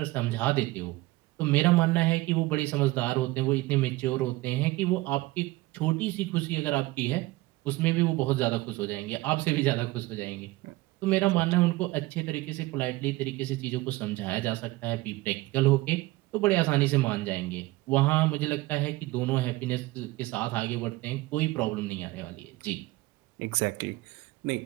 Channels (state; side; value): quieter; left; 19.6 dB